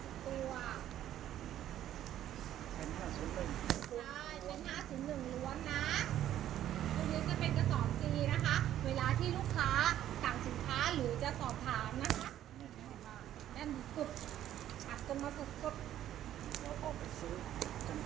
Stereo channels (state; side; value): quieter; left; 11.9 dB